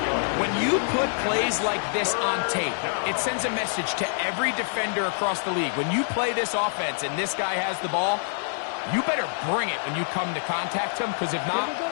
When you put plays like this on tape, it sends a message to every defender across the league. When you play this offense and this guy has the ball, you better bring it when you come to contact him, because if not,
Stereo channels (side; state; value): right; silent; digital silence